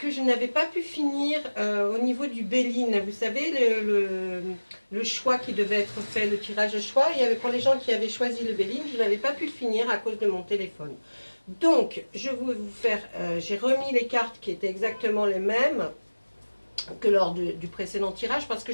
je n'avais pas pu finir au niveau du Béline. Vous savez, le choix qui devait être fait, le tirage de choix. Il y avait pour les gens qui avaient choisi le Béline, je n'avais pas pu le finir à cause de mon téléphone. Donc, je vais vous faire, j'ai remis les cartes qui étaient exactement les mêmes que lors du précédent tirage, parce que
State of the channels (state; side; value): inverted; both; correlation -1.00